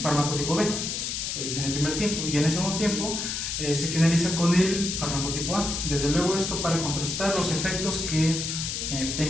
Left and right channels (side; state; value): left; noise; hiss, 3 dB below the sound